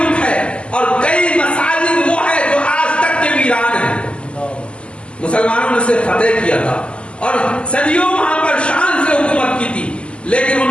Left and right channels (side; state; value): right; late; 0.053 ms